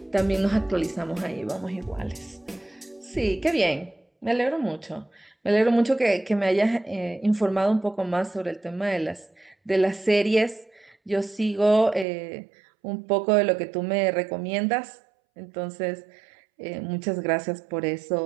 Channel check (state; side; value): drops out; left; at 12.1 s